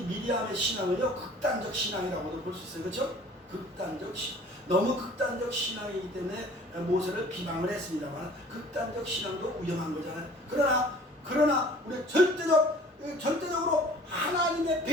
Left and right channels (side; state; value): both; normal; correlation 0.50